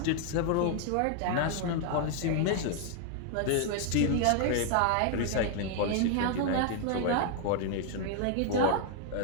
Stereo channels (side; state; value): both; different; correlation 0.00